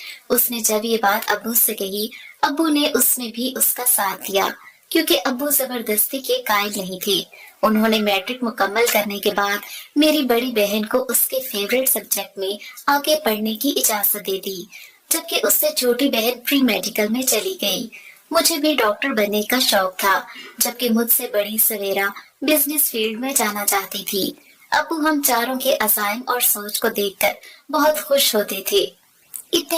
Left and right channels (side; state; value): both; identical; correlation 1.00